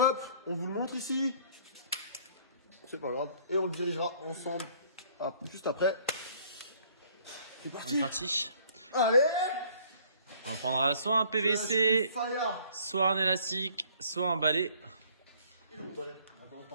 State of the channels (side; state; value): both; inverted; correlation -0.58